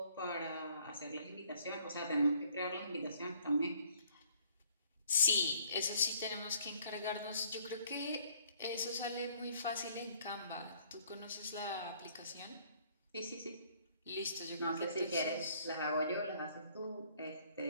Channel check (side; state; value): both; inverted; correlation -0.61